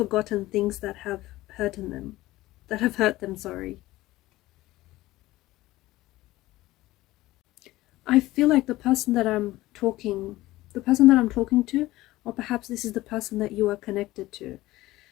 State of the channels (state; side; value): quieter; right; 17.5 dB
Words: things that have hurt them, sorry. I feel like the person that I'm talking to, or perhaps this is the person that you are connected to,